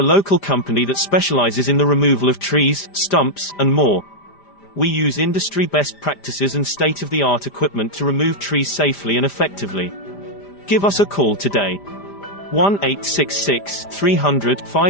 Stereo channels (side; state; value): right; late; 5.0 ms